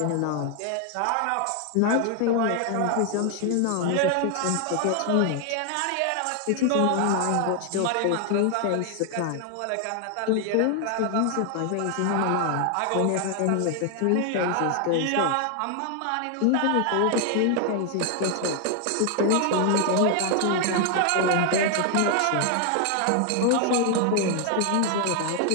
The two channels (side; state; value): both; different; correlation 0.00